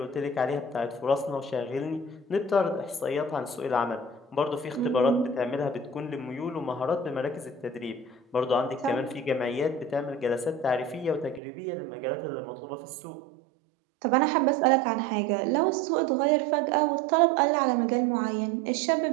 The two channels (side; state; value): left; drops out; at 11.4 s